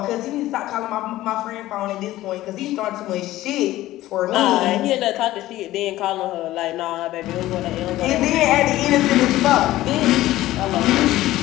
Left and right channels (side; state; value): right; quieter; 15.7 dB